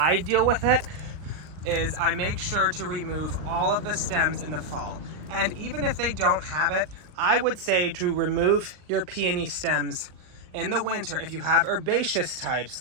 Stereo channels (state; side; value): late; left; 39 ms